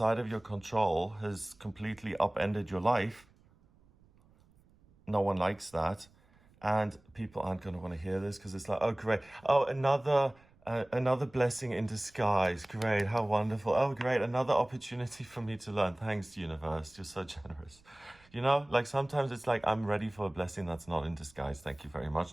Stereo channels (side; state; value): right; noise; rumble, 30 dB below the sound